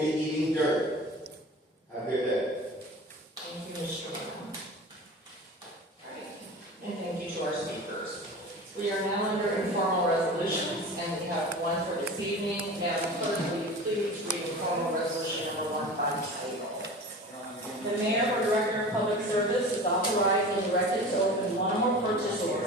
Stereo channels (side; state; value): both; normal; correlation 0.35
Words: be eating dirt. Have a good day. Thank you, Mr. Brown. Alright, and thank you to our speakers. We are now under informal resolutions, and we have one for this evening. Madam Clerk, will you please read informal resolution number 1 by title? The mayor or director of public service is authorized and directed to open one or more purchase